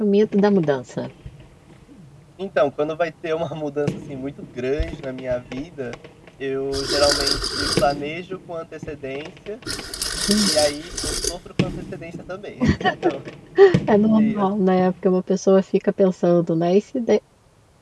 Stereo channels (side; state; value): both; identical; correlation 1.00